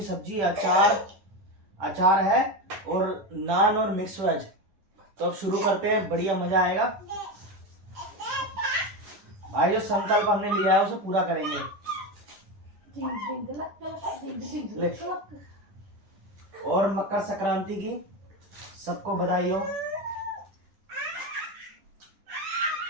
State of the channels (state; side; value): late; left; 10 ms